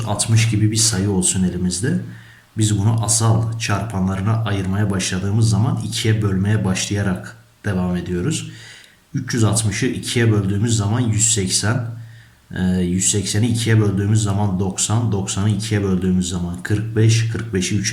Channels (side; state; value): both; identical; correlation 1.00